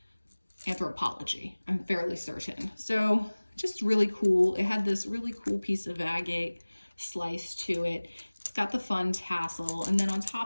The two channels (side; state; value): both; inverted; correlation -1.00